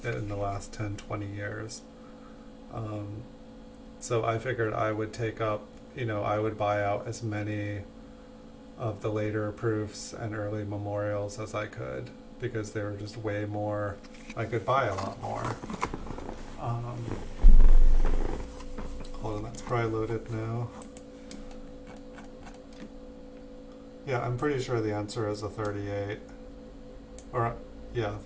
in the last 10, 20 years. So I figured I would take up, I would buy out as many of the later proofs and early memorials as I could, because they were just way more, I could buy a lot more. Hold on, that's probably loaded now. Yeah, I'm pretty sure the answer is a 38. Or, yeah,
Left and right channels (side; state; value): both; identical; correlation 1.00